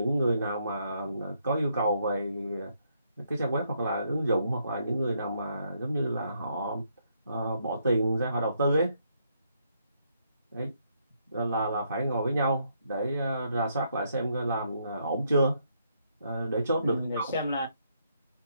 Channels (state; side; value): inverted; both; correlation -0.74